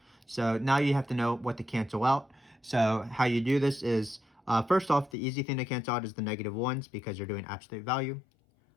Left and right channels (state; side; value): drops out; right; at 5.2 s